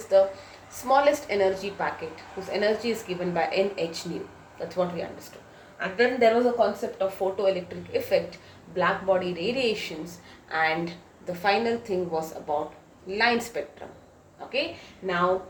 the smallest energy packet whose energy is given by nh nu. That's what we understood. And then there was a concept of photoelectric effect, black body radiations, and the final thing was about line spectrum. Okay, now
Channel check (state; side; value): identical; both; correlation 1.00